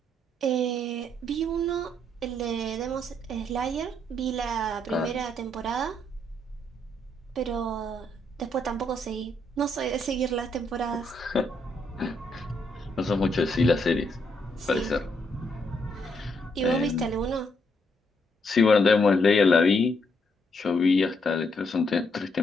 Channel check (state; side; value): normal; both; correlation 0.75